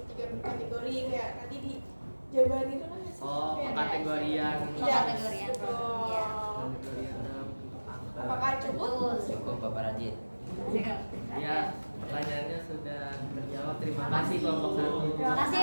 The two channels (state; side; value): inverted; both; correlation -1.00